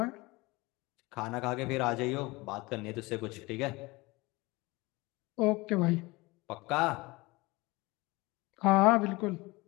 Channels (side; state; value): right; quieter; 22.9 dB